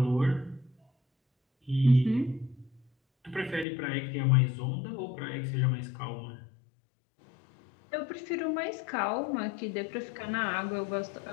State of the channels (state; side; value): drops out; right; at 3.7 s